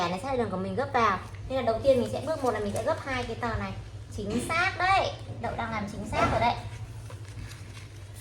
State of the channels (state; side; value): identical; both; correlation 1.00